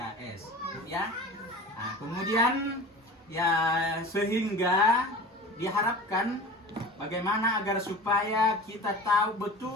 ya. Kemudian ya sehingga diharapkan bagaimana agar supaya kita tahu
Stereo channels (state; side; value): normal; both; correlation 0.37